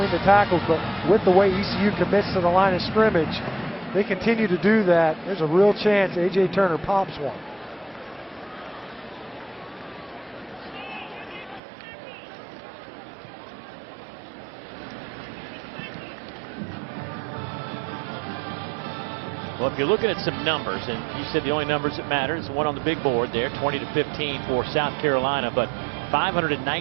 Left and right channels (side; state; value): left; drops out; at 11.6 s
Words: the tackles, but with the way ECU commits to the line of scrimmage, they continue to do that. There's a real chance A.J. Turner pops one. Well, if you're looking at some numbers, and you said the only numbers that matter is the one on the big board there, 20-15 for South Carolina, but